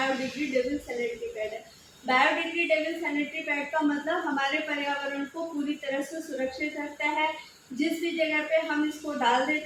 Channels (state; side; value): identical; both; correlation 1.00